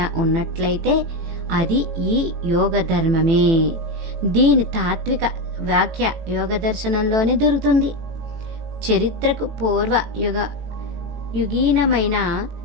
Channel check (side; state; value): left; late; 18 ms